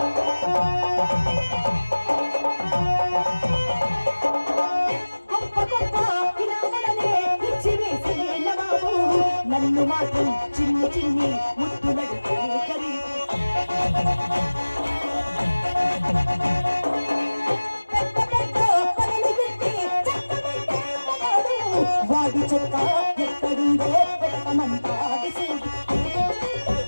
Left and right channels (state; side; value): inverted; both; correlation -1.00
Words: నన్ను మాత్రం చిన్ని చిన్ని ముద్దులడితే ఖరీదు. పెద్ద పెద్ద పనులు పెట్టి చక్కబెట్టే మగాడు. వాడి చెక్క ఎక్కడుందో పెట్టమంటాడు చూడు.